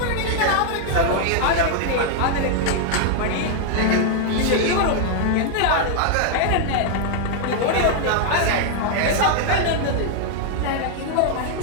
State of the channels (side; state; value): both; different; correlation 0.00